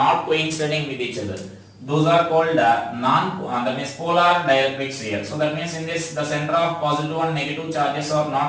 coinciding with each other, those are called that means polar dielectrics here. So that means in this the center of positive and negative charges are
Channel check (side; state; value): both; identical; correlation 1.00